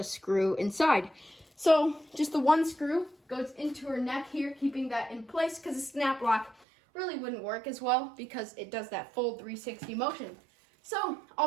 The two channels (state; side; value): drops out; left; at 6.6 s